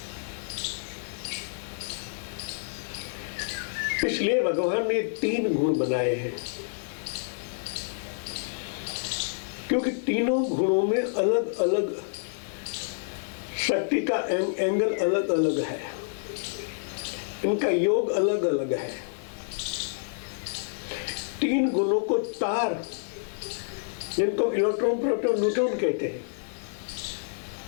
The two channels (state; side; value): silent; right; 59 dB below the other